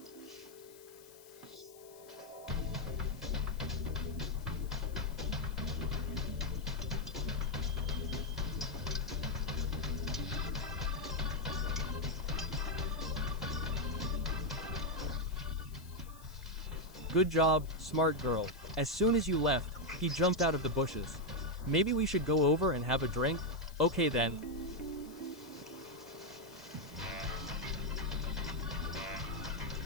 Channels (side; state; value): left; noise; hiss, 22 dB below the sound